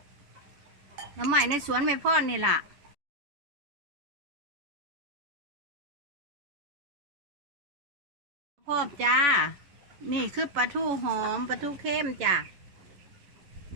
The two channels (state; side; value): late; left; 11 ms